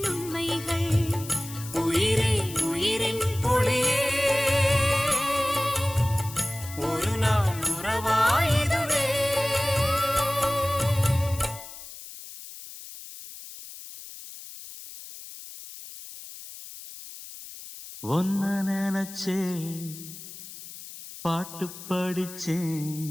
ஒன்ன நினைச்சே பாட்டு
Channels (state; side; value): noise; left; hiss, 14 dB below the sound